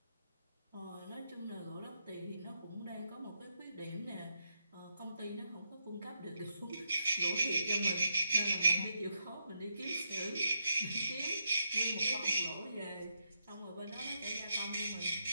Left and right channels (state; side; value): inverted; both; correlation -0.81